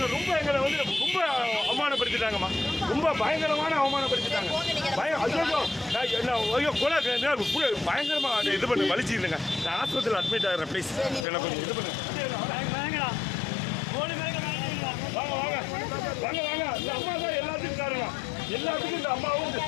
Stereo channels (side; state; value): right; drops out; at 11.2 s